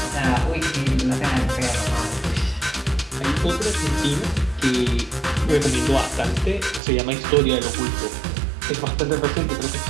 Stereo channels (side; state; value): left; drops out; at 6.8 s